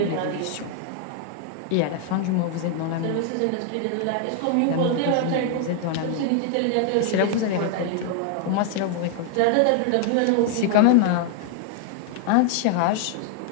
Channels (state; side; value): different; both; correlation 0.00